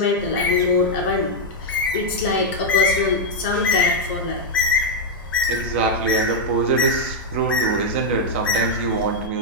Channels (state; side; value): normal; both; correlation 0.00